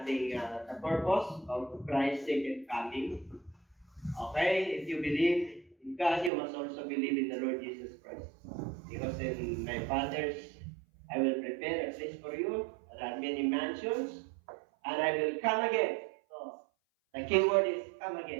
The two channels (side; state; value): left; drops out; at 6.3 s